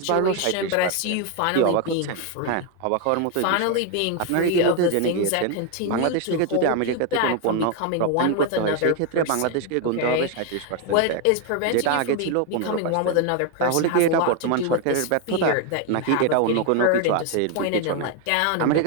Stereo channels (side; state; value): both; different; correlation 0.01